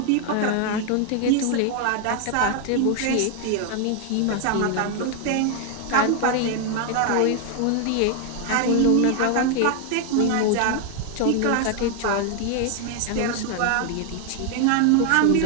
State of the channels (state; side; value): different; both; correlation 0.00